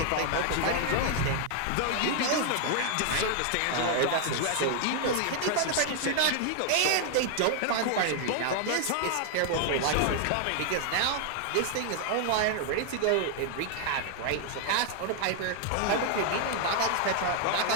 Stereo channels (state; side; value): different; both; correlation 0.00